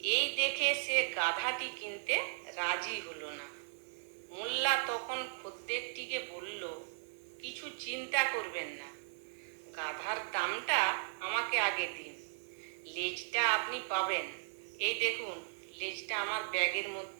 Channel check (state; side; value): silent; left; digital silence